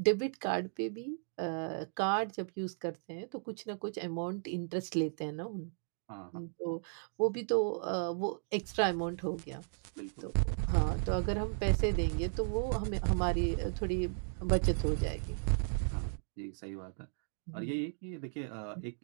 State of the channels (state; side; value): silent; left; digital silence